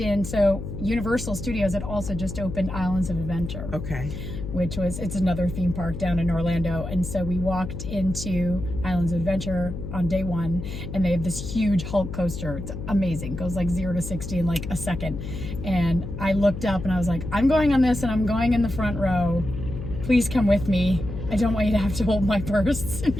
so Universal Studios had also just opened Islands of Adventure. Okay. Which was, it's another theme park down in Orlando. And so we walked into Islands of Adventure on day one, and they have this huge Hulk coaster. It's amazing. It goes like 0 to 60 in like a second. And I looked up and I was like, I'm going on this and I'm going in the front row. Please come with me. I don't want you to have to hold my purse. And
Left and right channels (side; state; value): left; noise; hum, 7 dB below the sound